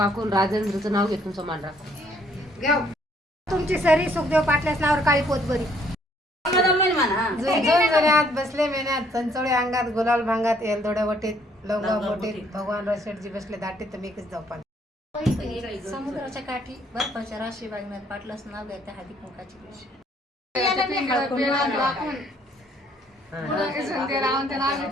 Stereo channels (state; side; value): normal; both; correlation 0.65